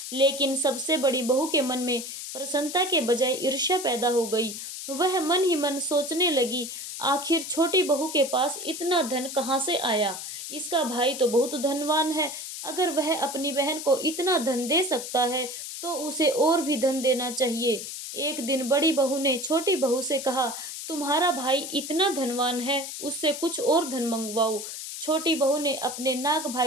लेकिन सबसे बड़ी बहू के मन में प्रसन्नता के बजाय ईर्ष्या पैदा हो गई। वह मन ही मन सोचने लगी, आखिर छोटी बहू के पास इतना धन कहाँ से आया? इसका भाई तो बहुत धनवान है। अगर वह अपनी बहन को इतना धन दे सकता है तो उसे और भी धन देना चाहिए। एक दिन बड़ी बहू ने छोटी बहू से कहा, तुम्हारा भाई इतना धनवान है, उससे कुछ और धन मंगवाओ। छोटी बहू ने अपने नाग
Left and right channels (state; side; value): noise; left; hiss, 8 dB below the sound